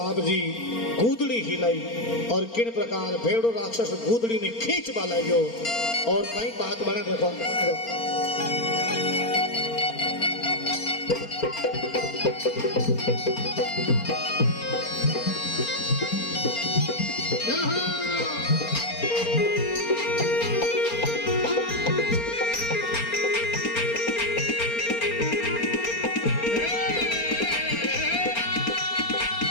जी कूदड़ी हिलाई और किन प्रकार भेड़ो राक्षस कूदड़ी ने खींच बाला गयो। और कई बात बने देखो Bravo!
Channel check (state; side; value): late; right; 4.3 ms